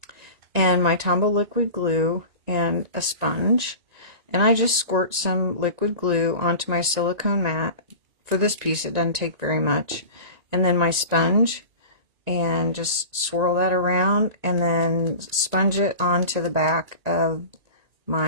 and my Tombow liquid glue and a sponge, and I just squirt some liquid glue onto my silicone mat. For this piece it doesn't take very much, and then my sponge, and just swirl that around and then sponge it onto the back of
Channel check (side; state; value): left; late; 1.9 ms